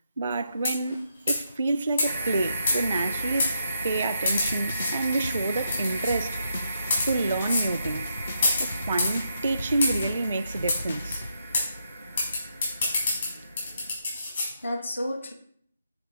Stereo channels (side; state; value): both; inverted; correlation -0.80